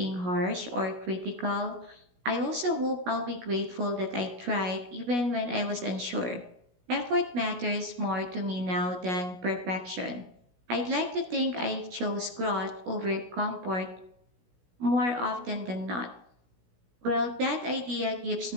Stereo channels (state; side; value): late; left; 16 ms